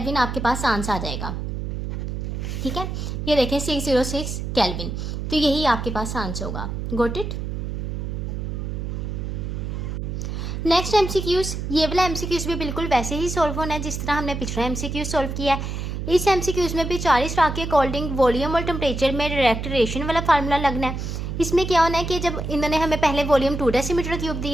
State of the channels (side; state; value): right; noise; hum, 4 dB below the sound